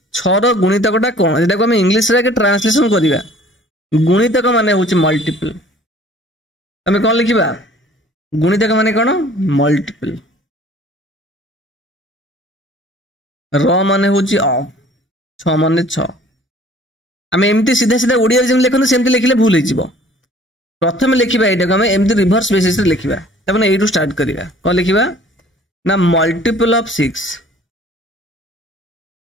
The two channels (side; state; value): both; normal; correlation 0.52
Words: 6ର ଗୁଣିତକଟା କଣ, ଯେଟାକୁ ଆମେ ଇଂଲିଶରେ ଆଗେ ଟ୍ରାନ୍ସଲେସନ କରିବା। ଗୁଣିତକ ମାନେ ହଉଛି ମଲ୍ଟିପଲ। ଆମେ କଣ ଲେଖିବା? ଗୁଣିତକ ମାନେ କଣ? ମଲ୍ଟିପଲ। ର ମାନେ ହଉଛି ଅଫ, 6 ମାନେ 6। ଆମେ ଏମିତି ସିଧା ସିଧା ଓଡ଼ିଆରେ ଯେମିତି ଲେଖନ୍ତୁ ସେମିତି ଲେଖିଲେ ଭୁଲ ହେଇଯିବ। ପ୍ରଥମେ ଲେଖିବା ଏଇଟାକୁ ଆମେ ଏମିତି ରିଭର୍ସ ବେସିସରେ ଲେଖିବା। ତାମାନେ ଏଇଠୁ ଷ୍ଟାର୍ଟ କରିବା। କଣ ଲେଖିବା ନା ମଲ୍ଟିପଲ ଅଫ 6